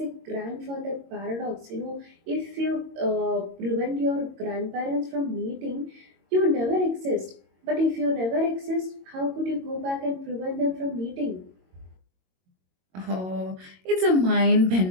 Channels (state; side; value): late; left; 22 ms